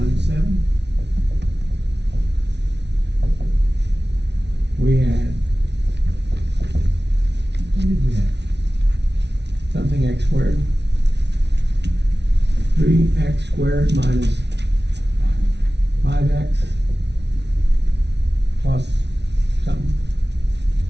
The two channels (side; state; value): left; late; 0.50 ms